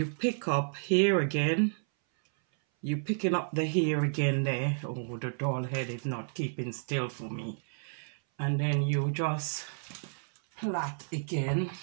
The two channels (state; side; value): silent; left; 57 dB below the other